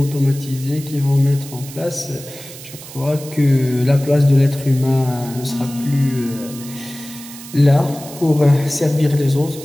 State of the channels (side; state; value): right; noise; hiss, 15 dB below the sound